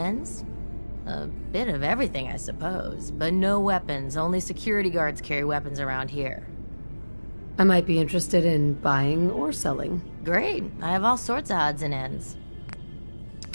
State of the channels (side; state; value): both; inverted; correlation -1.00